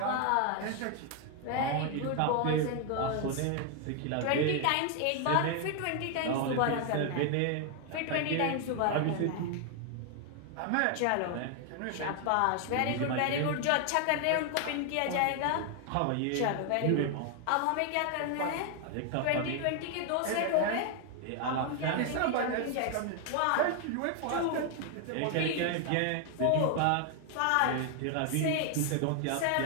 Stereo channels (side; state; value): both; different; correlation 0.00